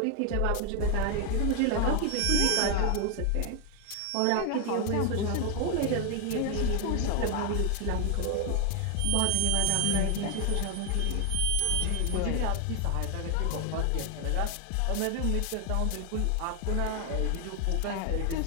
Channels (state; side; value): different; both; correlation 0.01